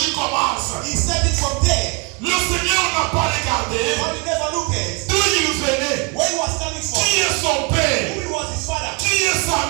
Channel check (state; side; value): quieter; left; 30.1 dB